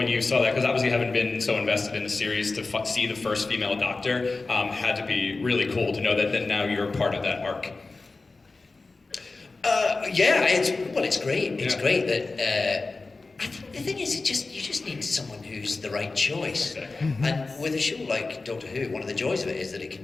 you saw that? Because obviously you haven't been so invested in the series to see the first female Doctor. Had to be really cool to know that now you're part of that arc. It's great. It's Yeah. great that. I think the thing is, you just need someone who's the right choice. And with a show like Doctor Who, one of the joys of it is that it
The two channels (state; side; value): quieter; right; 3.7 dB